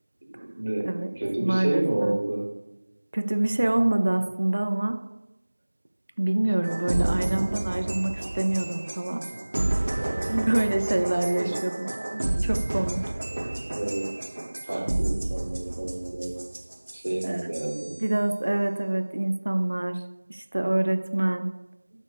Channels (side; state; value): both; inverted; correlation -1.00